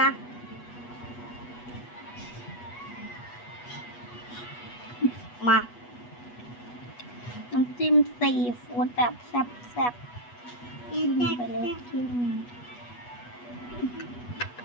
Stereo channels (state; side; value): late; right; 8.3 ms